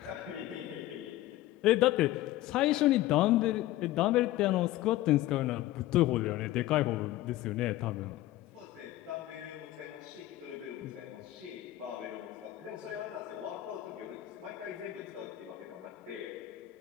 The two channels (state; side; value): quieter; right; 15.6 dB